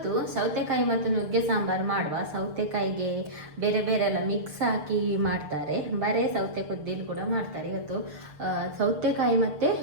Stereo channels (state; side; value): late; left; 6.6 ms